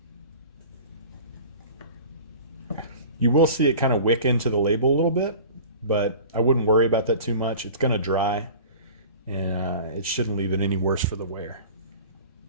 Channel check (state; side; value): inverted; both; correlation -0.41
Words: You will see it kind of wick into the label a little bit, but I wouldn't worry about that too much. It's going to dry, and it shouldn't leave it any worse for the wear.